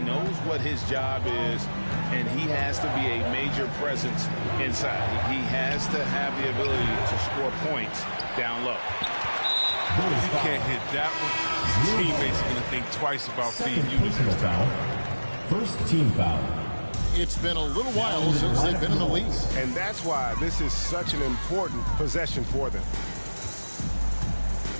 what his job is, and he has to be a major presence inside. He has to have the ability to score points down low. If he can't hit that one, his teammates are going to think twice about feeding you this time. First team foul. It's been a little while since they've been in the lead. And that's why this is such an important possession for them.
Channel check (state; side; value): inverted; both; correlation -1.00